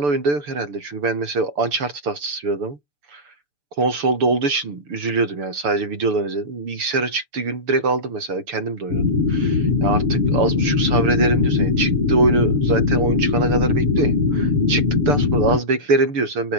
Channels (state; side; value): late; left; 6.9 ms